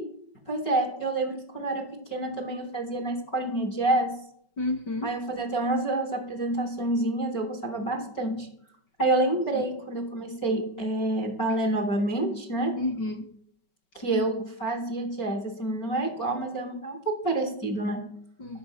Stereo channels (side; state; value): right; late; 5.3 ms